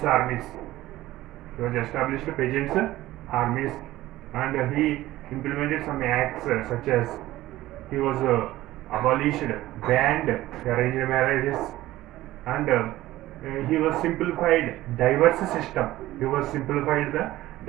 armies. He was established peasants' armies, and he implemented some acts such as he was abolished, banned arranged marriages, and he was simplified diverse system. He was simplified the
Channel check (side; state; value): left; quieter; 16.1 dB